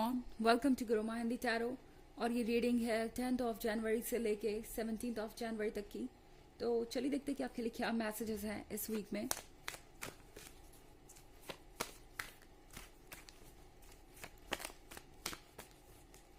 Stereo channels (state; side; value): identical; both; correlation 1.00